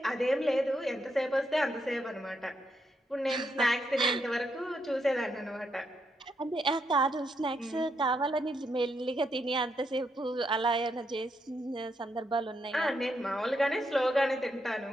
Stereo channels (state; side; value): normal; both; correlation 0.79